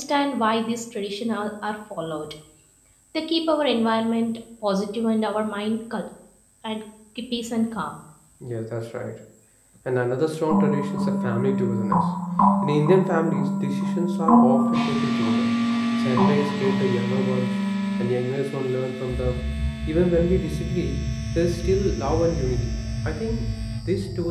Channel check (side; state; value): both; identical; correlation 1.00